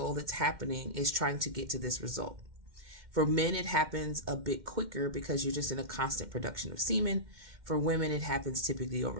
that's happening is trying to get to this result. For men, it happens a bit quicker because you're just in a constant production of semen. For women, it happens typically over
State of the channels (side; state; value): left; late; 2.1 ms